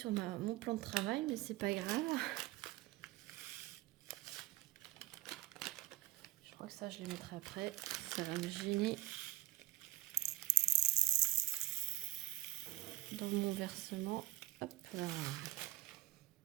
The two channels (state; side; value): quieter; left; 17.7 dB